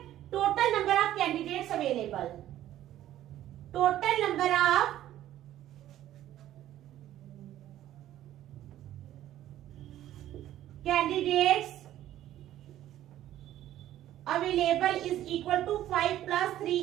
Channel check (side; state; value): left; quieter; 12.9 dB